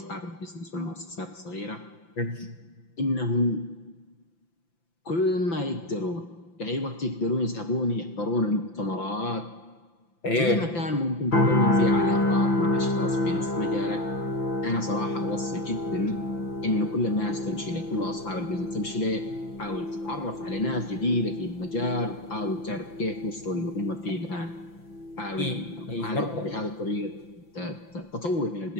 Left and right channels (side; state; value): right; late; 5.9 ms